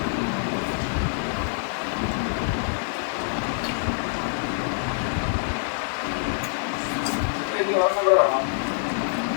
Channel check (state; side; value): silent; right; 61 dB below the other